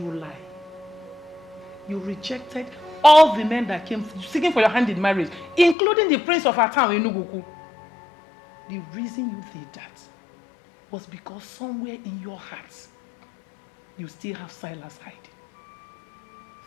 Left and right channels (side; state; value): right; drops out; at 5.8 s